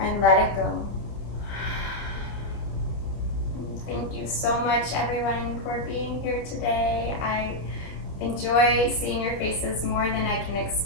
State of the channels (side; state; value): right; late; 29 ms